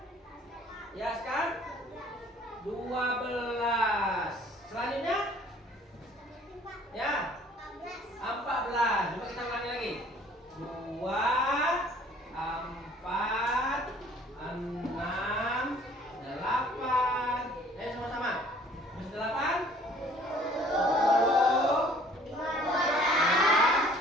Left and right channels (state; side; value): normal; both; correlation 0.55